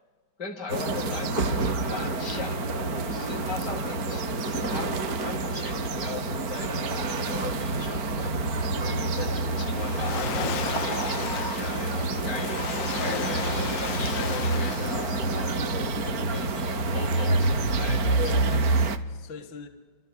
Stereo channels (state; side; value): late; right; 4.5 ms